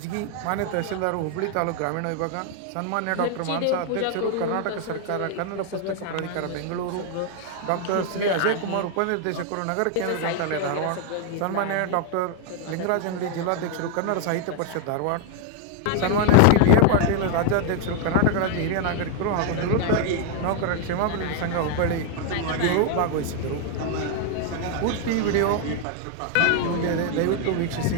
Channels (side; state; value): both; different; correlation 0.00